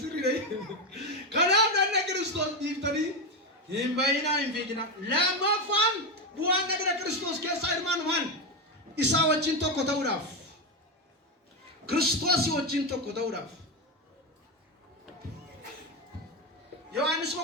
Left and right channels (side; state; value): both; normal; correlation 0.11